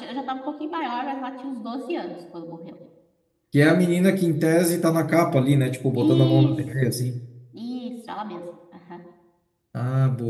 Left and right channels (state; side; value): identical; both; correlation 1.00